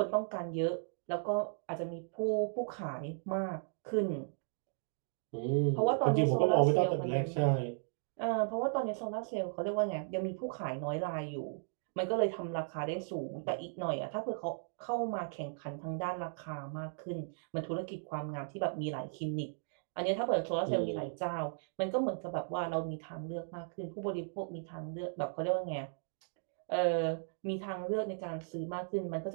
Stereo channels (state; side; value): silent; left; digital silence